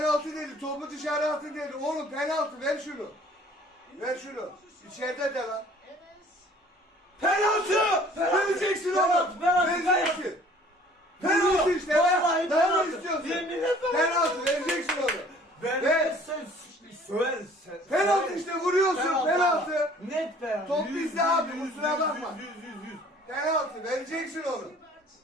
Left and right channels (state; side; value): normal; both; correlation 0.53